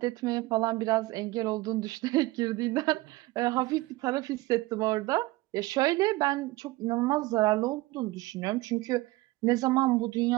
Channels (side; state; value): left; quieter; 20.0 dB